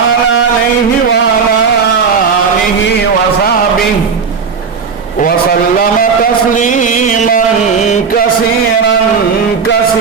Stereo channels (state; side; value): quieter; left; 5.7 dB